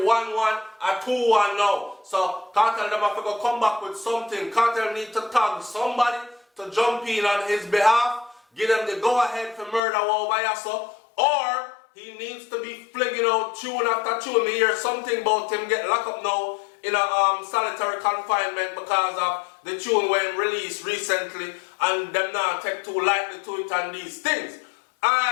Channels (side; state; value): right; drops out; at 9.8 s